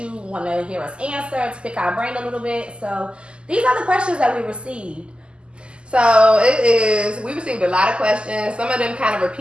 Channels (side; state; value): left; late; 0.051 ms